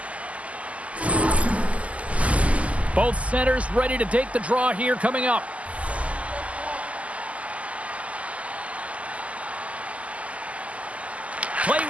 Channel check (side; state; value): left; late; 0.067 ms